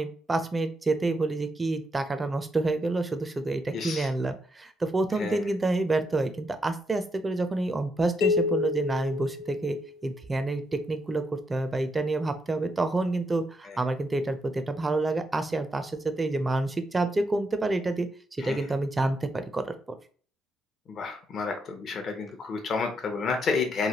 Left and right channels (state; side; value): normal; both; correlation 0.79